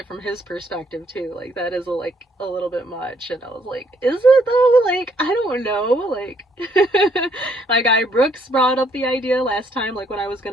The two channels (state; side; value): normal; both; correlation 0.68